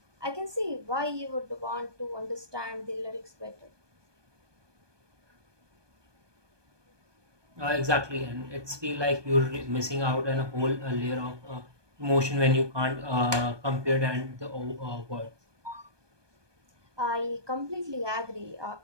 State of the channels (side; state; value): left; late; 1.2 ms